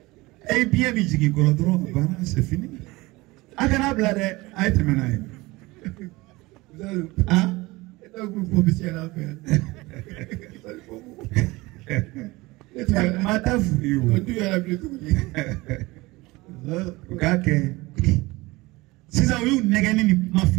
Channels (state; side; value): quieter; left; 21.5 dB